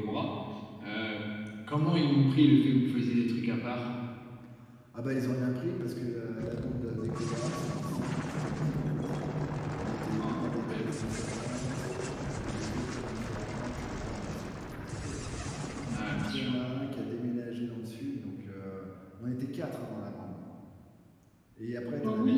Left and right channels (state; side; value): identical; both; correlation 1.00